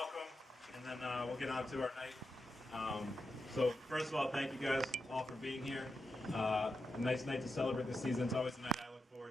and then we'll get on to our night. So first of all, thank you guys all for being here. A nice night to celebrate the season. It's always a night I look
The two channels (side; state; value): both; normal; correlation 0.87